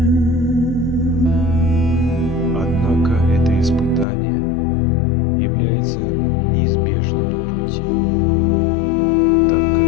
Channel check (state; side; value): drops out; right; at 4.0 s